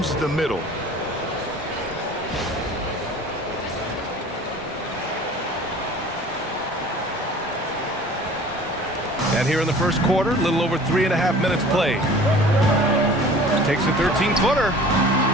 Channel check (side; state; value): both; normal; correlation 0.45